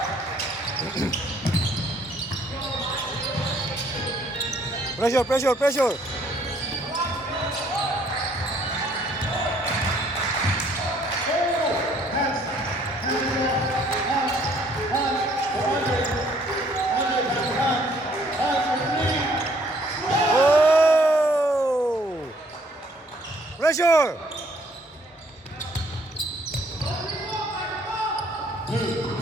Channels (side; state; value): both; normal; correlation 0.63